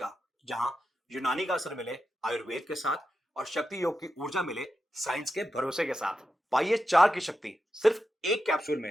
जहां यूनानी का असर मिले आयुर्वेद के साथ और शक्ति योग की ऊर्जा मिले साइंस के भरोसे के साथ। पाइए 4 की शक्ति सिर्फ एक कैप्सूल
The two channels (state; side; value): normal; both; correlation 0.89